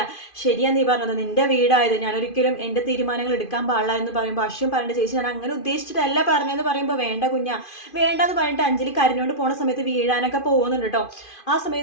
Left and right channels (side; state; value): right; late; 2.5 ms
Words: ശരിയാ നീ പറഞ്ഞത്, നിന്റെ വീടായത്, ഞാനൊരിക്കലും എൻ്റെ തീരുമാനങ്ങൾ എടുക്കാൻ പാടില്ല എന്ന് പറയുമ്പോൾ അശ്വിൻ പറയേണ്ട ചേച്ചി ഞാൻ അങ്ങനെ ഉദ്ദേശിച്ചിട്ടല്ല പറഞ്ഞതെന്ന് പറയുമ്പോൾ വേണ്ട കുഞ്ഞ വേണ്ടെന്ന് പറഞ്ഞിട്ട് അഞ്ജലി കരഞ്ഞോണ്ട് പോണ സമയത്ത് വീഴാനൊക്കെ പോകുന്നുണ്ട് കേട്ടോ. ആ